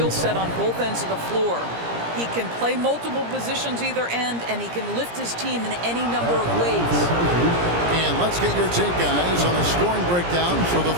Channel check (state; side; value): late; left; 17 ms